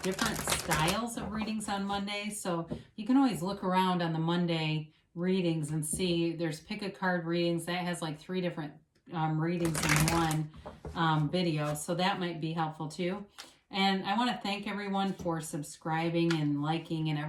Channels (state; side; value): identical; both; correlation 1.00